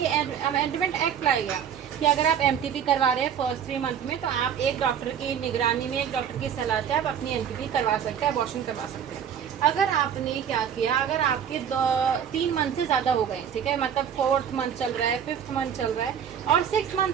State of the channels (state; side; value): quieter; left; 8.4 dB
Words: अमेंडमेंट एक्ट लाएगा कि अगर आप एमटीपी करवा रहे हैं फर्स्ट 3 मंथ में, तो आप एक डॉक्टर की निगरानी में, एक डॉक्टर की सलाह से आप अपनी एमटीपी करवा सकते हैं, अबॉर्शन करवा सकते हैं। अगर आपने क्या किया, अगर आपके 3 मंथ से ज़्यादा हो गए, ठीक है, मतलब 4th मंथ चल रहा है, 5th मंथ चल रहा है, और 6 मंथ